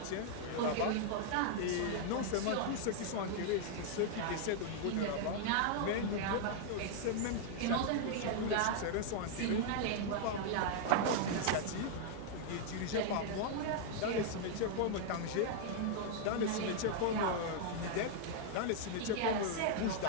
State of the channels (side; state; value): both; different; correlation -0.01